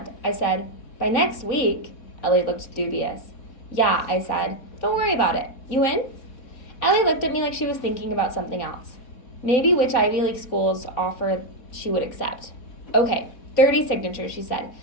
I said. By next week? Ellie looked dubious. Yeah, I said. Don't worry about it. You in? Ellie looked at me like she was thinking about something else. Maybe which Ivy League schools offer she would accept. Okay, 30 signatures, she said.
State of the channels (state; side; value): late; right; 3.9 ms